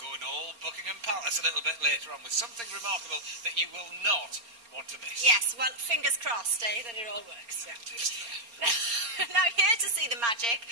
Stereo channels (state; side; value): late; left; 4.3 ms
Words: all Buckingham Palace a little bit later on with something remarkable that you will not want to miss. Yes, well, fingers crossed, that it all works. Yeah, it is there. Now, here to see the magic